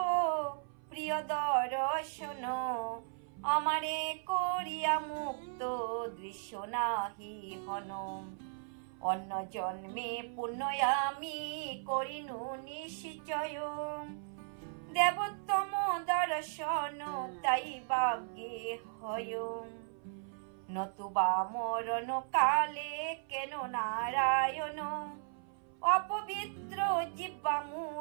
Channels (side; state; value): left; silent; 54 dB below the other